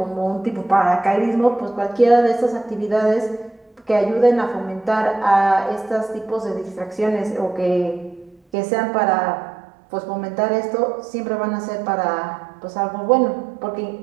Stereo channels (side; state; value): left; drops out; at 8.4 s